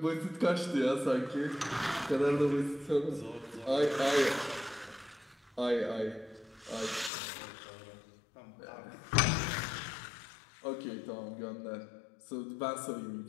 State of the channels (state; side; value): drops out; right; at 7.1 s